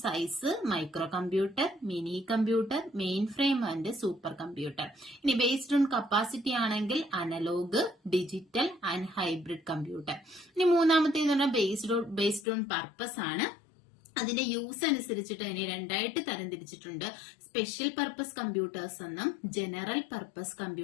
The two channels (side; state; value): right; drops out; at 12.5 s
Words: size micro computer, mini computer, mainframe and super computer. ഇനി ബേസ്ഡ് ഓൺ കപ്പാസിറ്റി ആണെങ്കിൽ analog, digital and hybrid computer. ഇനി മൂന്നാമത്തേന്ന് പറഞ്ഞാൽ ബേസ്ഡ് ഓൺ പർപ്പസ് ആണ്. അതിന്റെ യൂസ് അനുസരിച്ചിട്ട് അതിനെ 2ആയിട്ട് തരംതിരിച്ചിട്ടുണ്ട്. സ്പെഷ്യൽ പർപ്പസ് കമ്പ്യൂട്ടേഴ്സ് എന്നും ജനറൽ പർപ്പസ്